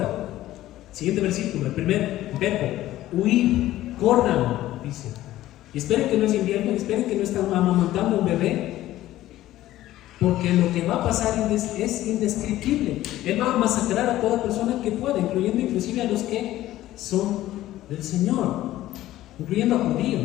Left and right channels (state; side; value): quieter; right; 14.8 dB